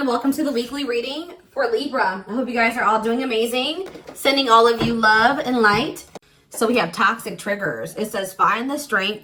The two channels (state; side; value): identical; both; correlation 1.00